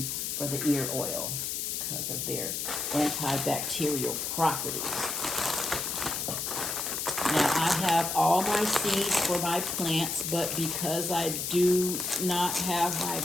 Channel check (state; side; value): noise; left; hiss, 2 dB below the sound